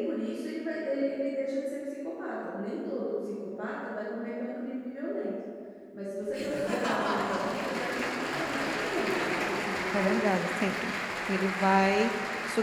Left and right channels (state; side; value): identical; both; correlation 1.00